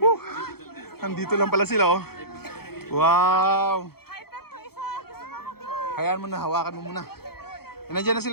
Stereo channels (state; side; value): late; right; 0.95 ms